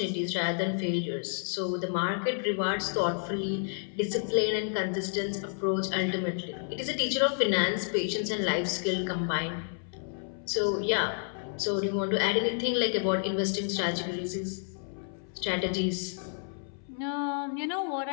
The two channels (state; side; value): silent; right; 58 dB below the other